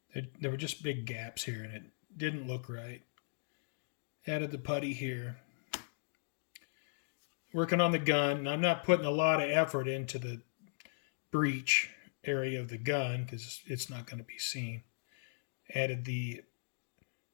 know, there were just big gaps here, and it didn't look right. Added the putty here. Working on the gun. I'm not putting a lot of effort into the breech area of the gun because it's not going to be seen. Added the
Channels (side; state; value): right; silent; digital silence